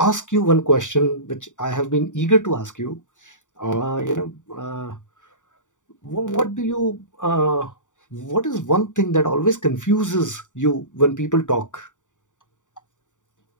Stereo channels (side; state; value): right; late; 0.86 ms